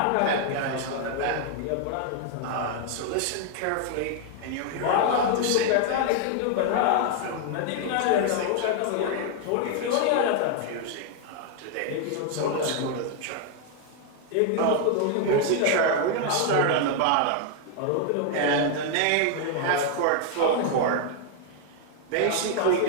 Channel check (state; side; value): different; both; correlation 0.00